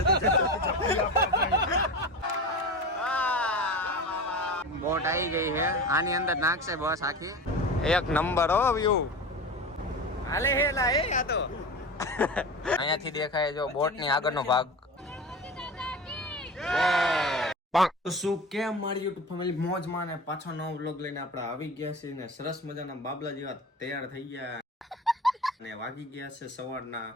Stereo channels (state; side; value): normal; both; correlation 0.30